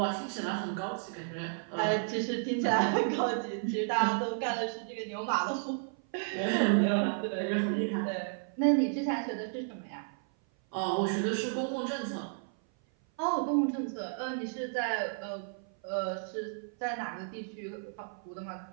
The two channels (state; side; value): silent; left; 55 dB below the other